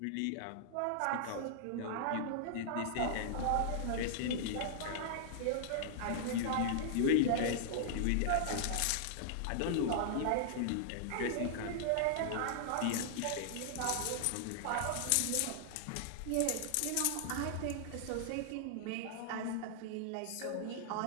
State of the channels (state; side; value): different; both; correlation -0.01